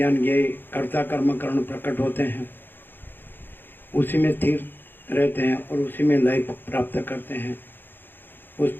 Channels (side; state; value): right; late; 0.096 ms